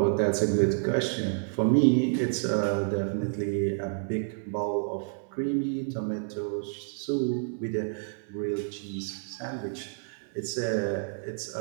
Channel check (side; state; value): left; silent; 58 dB below the other